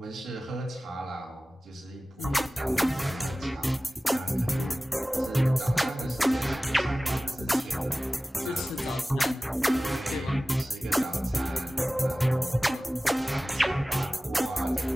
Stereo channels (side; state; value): both; normal; correlation 0.97